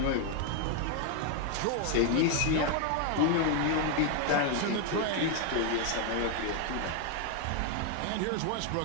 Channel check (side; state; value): both; different; correlation 0.00